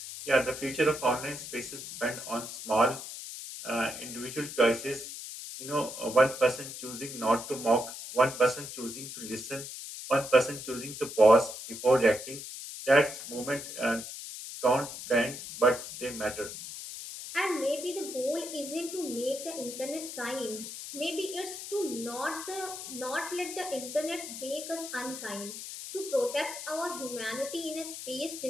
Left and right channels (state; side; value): noise; left; hiss, 9 dB below the sound